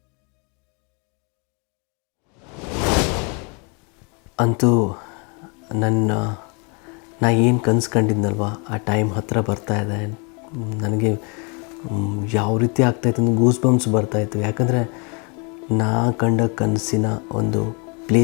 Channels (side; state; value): right; quieter; 33.7 dB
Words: ಅಂತೂ ನಾ ಏನು ಕನಸು ಕಂಡಿದ್ನಲ್ವ ಆ ಟೈಮ್ ಹತ್ತಿರ ಬರ್ತಾಯಿದೆ. ನನಗೆ ಯಾವ ರೀತಿ ಆಗ್ತಾಯಿತ್ತು ಅಂದರೆ ಗೂಸ್ ಬಂಪ್ಸ್ ಬರ್ತಾಯಿತ್ತು. ಯಾಕಂದರೆ ನಾ ಕಂಡ ಕನಸಿನ ಒಂದು